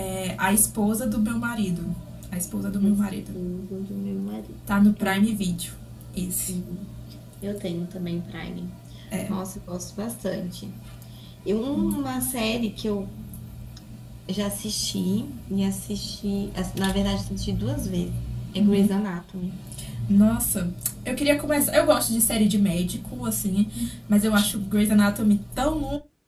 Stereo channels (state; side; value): identical; both; correlation 1.00